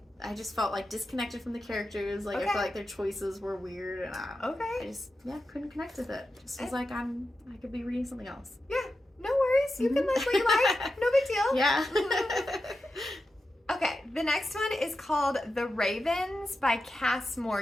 I just felt like disconnected from the characters. Like, I felt like their choices were weird, and I just couldn't connect with it. Just was like, I could be reading something else. Yeah, no worries. You can like what you like. No big deal. Yeah. Okay, the next one is called The Ravens by Cass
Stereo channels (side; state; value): both; normal; correlation 0.90